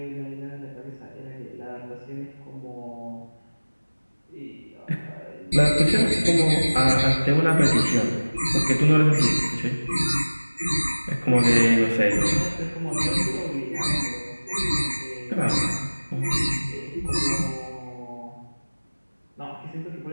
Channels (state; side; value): inverted; both; correlation -1.00